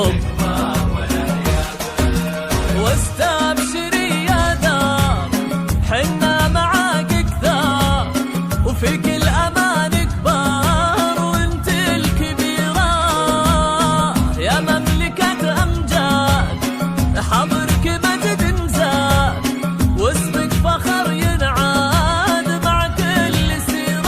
واستبشري يا دار حنا معاك كثار وفي كل أمان كبار وانت الكبيرة يا مملكة أمجاد حضرك مجد نزاد واسمك فخر ينعاد مع كل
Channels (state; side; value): identical; both; correlation 1.00